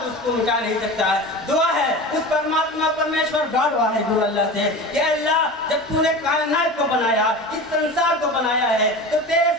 اس کو مٹا نہیں سکتا ہے. دعا ہے اس پرماتما پرمیشور گاڈ واحد گرو اللہ سے کہ اللہ جب تو نے کائنات کو بنایا، اس سنسار کو بنایا ہے، تو تیرے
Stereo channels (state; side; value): normal; both; correlation 0.31